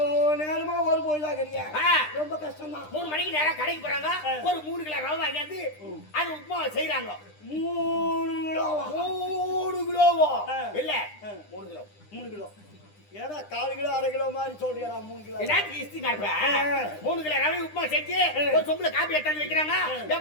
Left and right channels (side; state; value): right; late; 9.9 ms